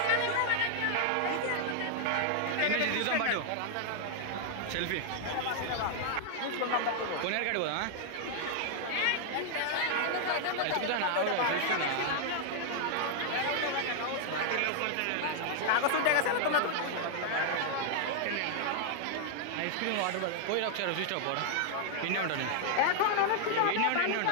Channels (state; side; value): different; both; correlation 0.00